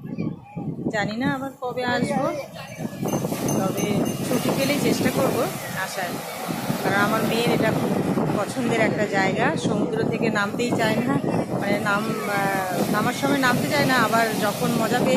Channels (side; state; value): both; identical; correlation 1.00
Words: জানি না আবার কবে আসবো, তবে ছুটি পেলেই চেষ্টা করব আসার। কারণ আমার মেয়ের এটা খুব পছন্দের একটা জায়গা। সমুদ্র থেকে নামতেই চায় না, মানে নামার সময় নামতে চায় না, আবার যখন মজা